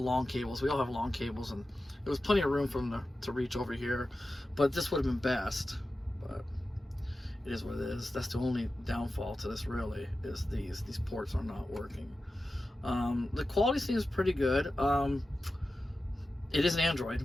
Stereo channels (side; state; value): both; normal; correlation 0.93